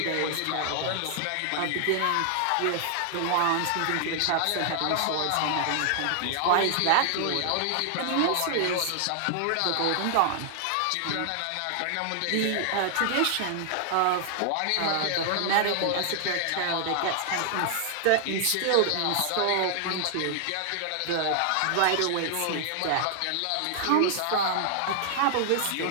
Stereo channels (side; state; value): both; different; correlation -0.01